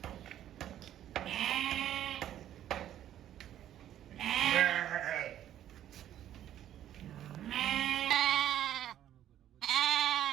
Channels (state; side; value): quieter; left; 11.5 dB